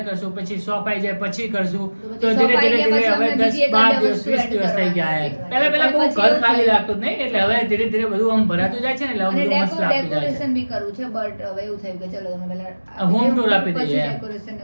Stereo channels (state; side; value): inverted; both; correlation -1.00